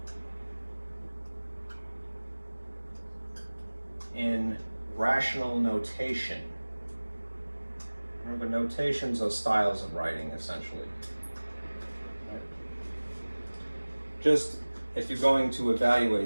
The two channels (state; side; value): inverted; both; correlation -1.00